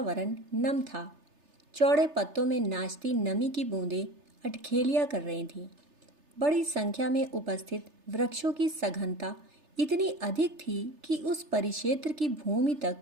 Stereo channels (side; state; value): left; late; 3.3 ms